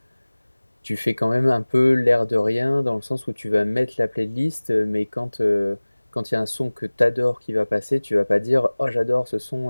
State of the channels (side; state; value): both; inverted; correlation -1.00